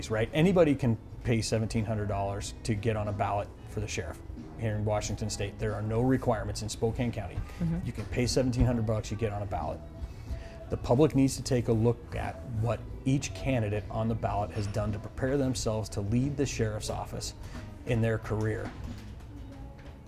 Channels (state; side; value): identical; both; correlation 1.00